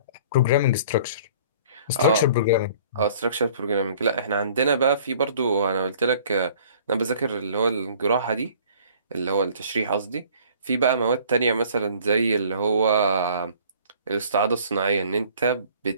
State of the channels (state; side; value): inverted; both; correlation -0.52